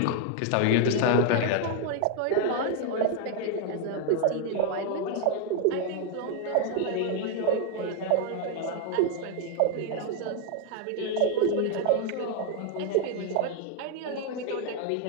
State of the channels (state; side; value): different; both; correlation 0.01